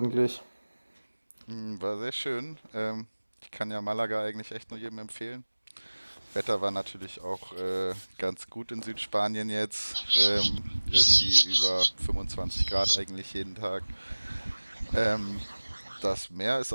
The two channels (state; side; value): inverted; both; correlation -1.00